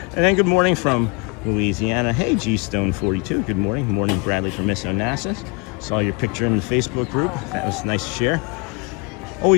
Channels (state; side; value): quieter; right; 31.6 dB